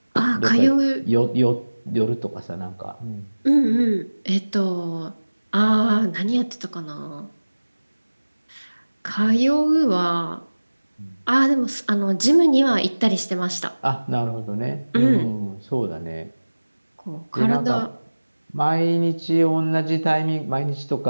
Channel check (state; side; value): inverted; both; correlation -1.00